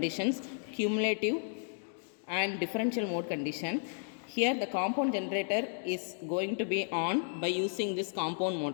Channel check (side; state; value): right; silent; digital silence